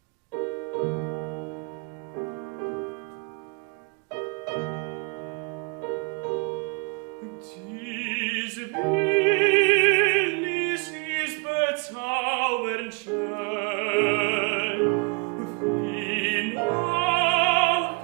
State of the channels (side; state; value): left; quieter; 31.1 dB